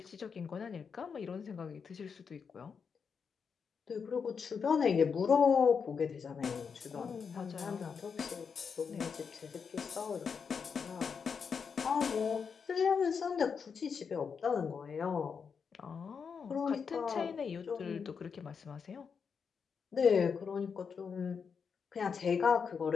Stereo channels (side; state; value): right; quieter; 6.1 dB